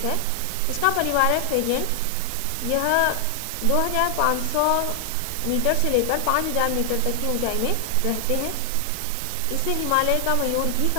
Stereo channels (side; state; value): both; different; correlation 0.00